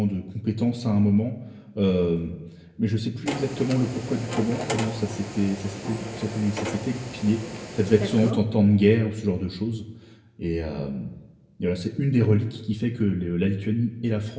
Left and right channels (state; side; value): identical; both; correlation 1.00